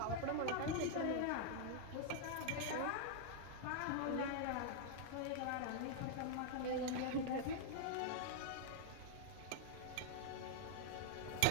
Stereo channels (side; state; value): both; different; correlation -0.01